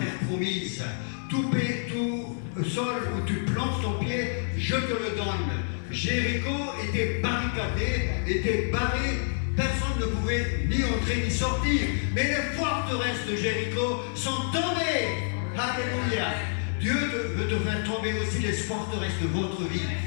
promise. Tout sol où tu plantes ton pied, je te le donne. Jéricho était barricadé, était barré. Personne ne pouvait ni entrer ni sortir. Mais les forteresses de Jéricho sont tombées. Alléluia. Dieu veut te faire tomber aussi les forteresses de votre vie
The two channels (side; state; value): right; silent; digital silence